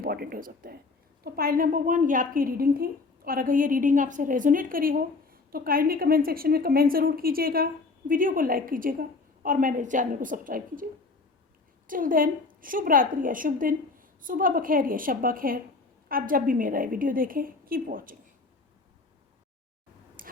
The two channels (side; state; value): right; quieter; 3.9 dB